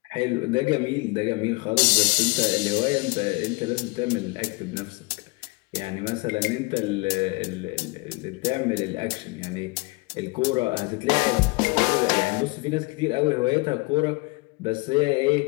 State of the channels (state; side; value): quieter; right; 26.1 dB